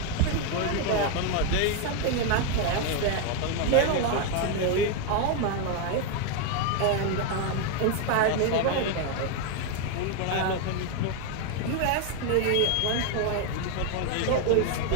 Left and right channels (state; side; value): different; both; correlation 0.01